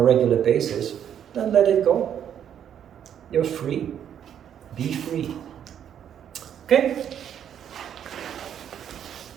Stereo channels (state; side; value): quieter; left; 9.3 dB